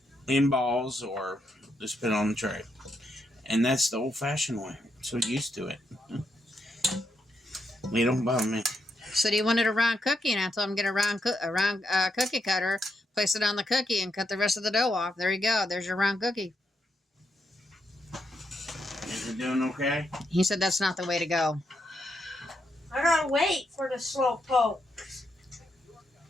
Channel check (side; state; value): both; normal; correlation 0.80